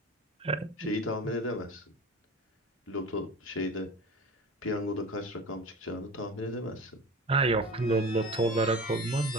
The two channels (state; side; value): normal; both; correlation 0.34